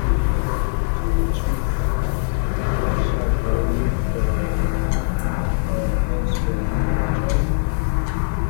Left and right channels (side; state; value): right; silent; digital silence